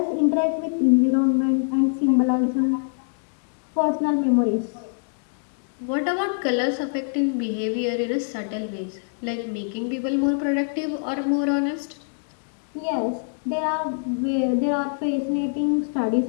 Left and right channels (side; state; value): right; silent; digital silence